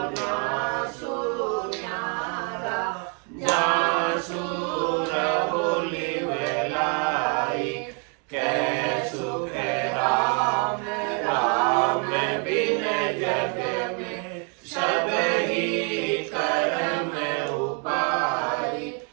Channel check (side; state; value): left; quieter; 38.6 dB